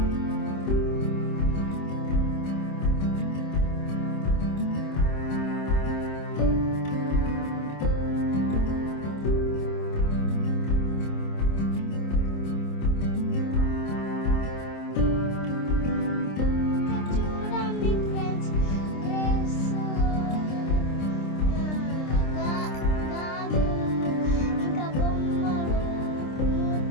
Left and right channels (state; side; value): late; right; 26 ms